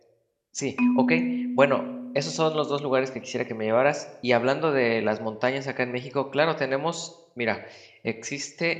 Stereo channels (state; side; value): identical; both; correlation 1.00